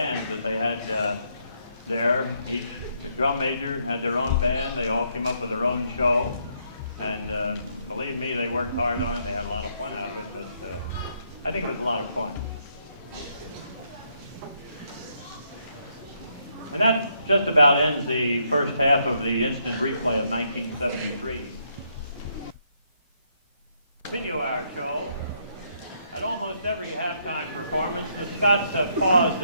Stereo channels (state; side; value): inverted; both; correlation -0.74